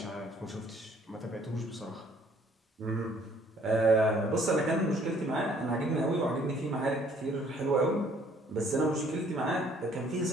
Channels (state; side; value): normal; both; correlation 0.60